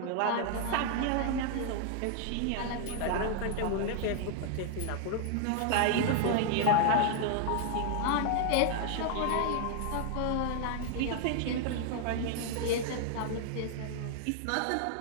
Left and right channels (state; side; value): different; both; correlation 0.00